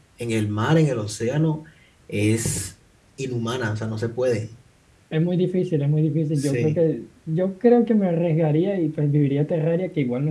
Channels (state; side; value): identical; both; correlation 1.00